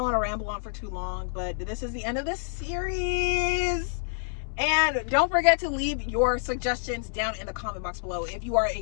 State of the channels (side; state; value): right; silent; digital silence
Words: want to ramble on for too long, but this is the end of the series. And don't forget to leave your suggestions down in the comment box below. If you are a